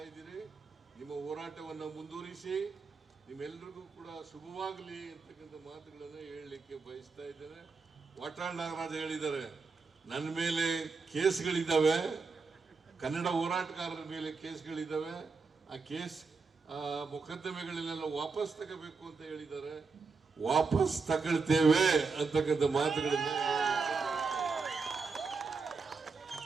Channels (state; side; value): quieter; left; 4.6 dB